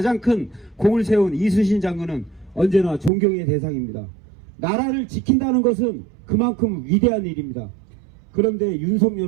큰 공을 세운 이순신 장군은 언제나 존경의 대상입니다. 나라를 지킨다는 것은 그만큼 위대한 일입니다. 그런데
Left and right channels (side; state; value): left; drops out; at 3.1 s